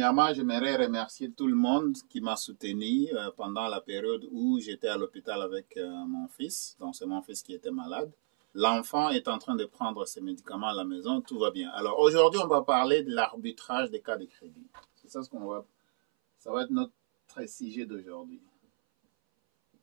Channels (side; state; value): left; silent; 57 dB below the other